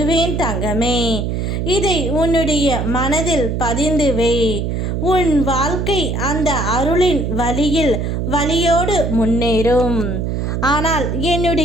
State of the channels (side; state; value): right; noise; hum, 1 dB below the sound